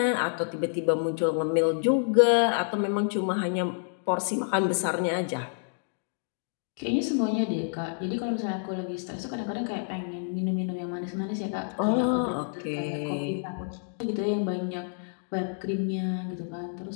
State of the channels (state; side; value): silent; right; digital silence